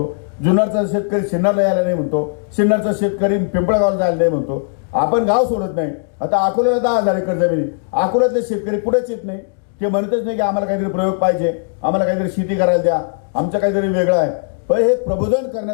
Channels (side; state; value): right; silent; digital silence